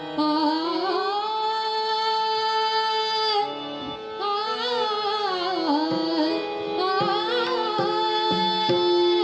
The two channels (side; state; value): both; identical; correlation 1.00